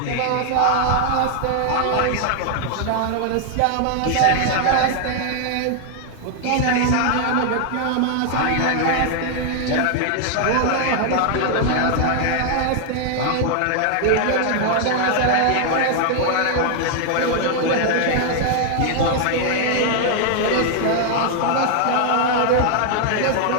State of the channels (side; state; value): both; different; correlation 0.00